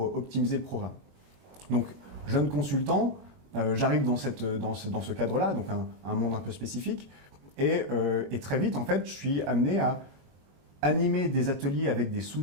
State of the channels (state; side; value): late; left; 21 ms